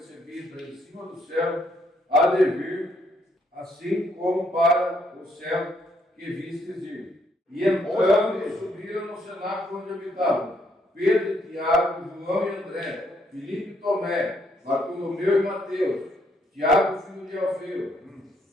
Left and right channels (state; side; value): normal; both; correlation 0.72